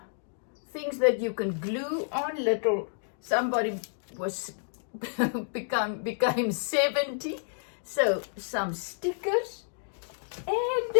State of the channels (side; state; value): right; silent; digital silence